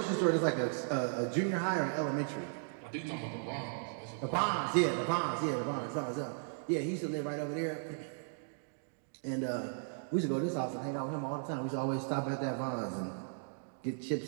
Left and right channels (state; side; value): silent; left; digital silence